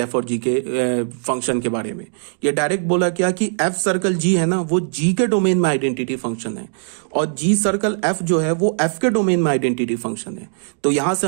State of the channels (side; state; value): left; silent; 63 dB below the other